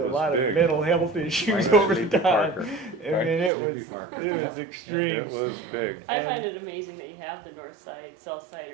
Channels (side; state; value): left; drops out; at 3.5 s